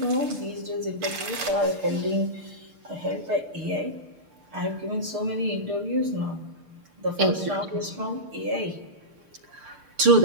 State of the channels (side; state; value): left; late; 6.6 ms